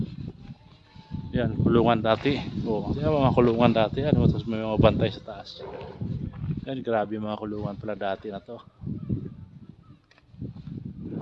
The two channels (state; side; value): identical; both; correlation 1.00